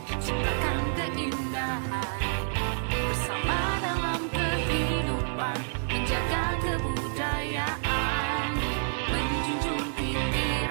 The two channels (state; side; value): silent; left; digital silence